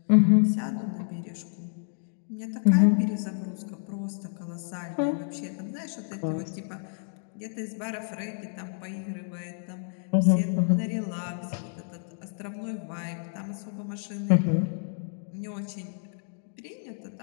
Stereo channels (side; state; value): right; silent; 58 dB below the other